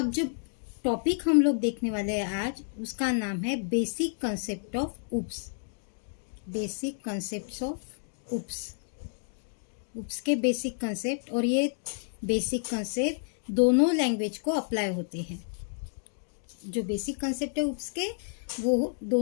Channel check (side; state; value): right; silent; digital silence